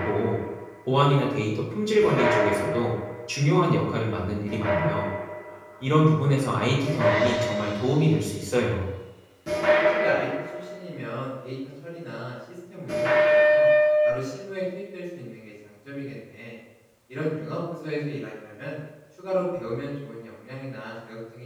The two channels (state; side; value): identical; both; correlation 1.00